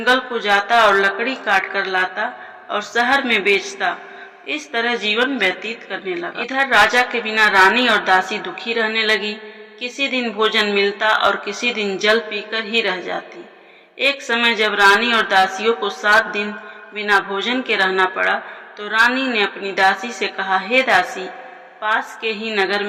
को जाता और लकड़ी काट कर लाता और शहर में बेचता। इस तरह जीवन व्यतीत करने लगा। इधर राजा के बिना रानी और दासी दुखी रहने लगी। किसी दिन भोजन मिलता और किसी दिन जल पीकर ही रह जाती। एक समय जब रानी और दासियों को 7 दिन बिना भोजन के रहना पड़ा, तो रानी ने अपनी दासी से कहा, हे दासी, पास के ही नगर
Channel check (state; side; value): identical; both; correlation 1.00